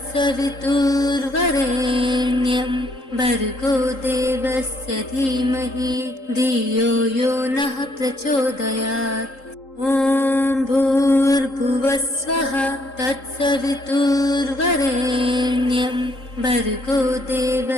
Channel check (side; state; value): right; late; 3.8 ms